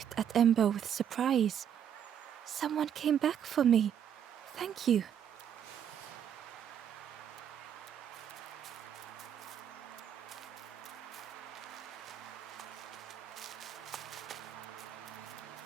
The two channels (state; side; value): quieter; left; 9.1 dB